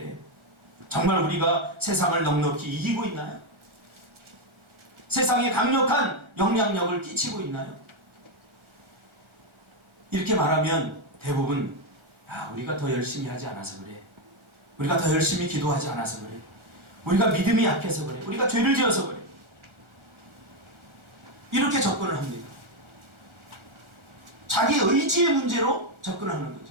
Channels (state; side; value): late; left; 1.4 ms